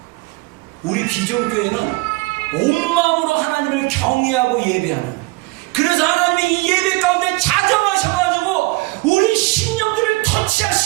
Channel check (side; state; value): left; quieter; 23.3 dB